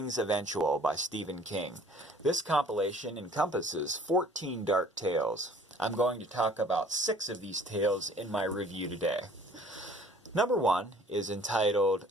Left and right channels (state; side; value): normal; both; correlation 0.53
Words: Eventual by Stephen King. This compilation encompasses 14 dark tales. I'm going to talk about 6 of these tales in my review today. Number 1 is entitled